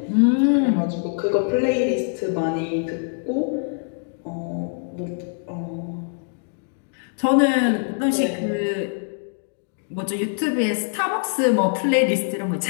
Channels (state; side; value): silent; right; digital silence